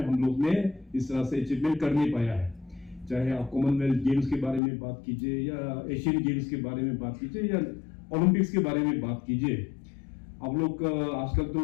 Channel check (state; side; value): drops out; right; at 4.6 s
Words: हम लोग ने इस तरह से अचीवमेंट कर नहीं पाया है। चाहे आप कॉमनवेल्थ गेम्स के बारे में बात कीजिए या एशियन गेम्स के बारे में बात कीजिए या ओलंपिक्स के बारे में बात कीजिए। आप लोग आजकल तो